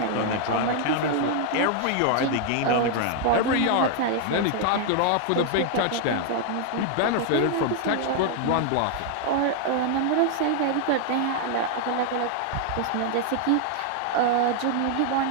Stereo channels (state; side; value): different; both; correlation 0.00